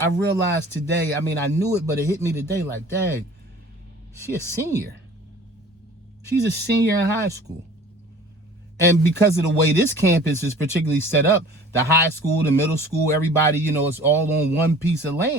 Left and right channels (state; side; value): normal; both; correlation 0.46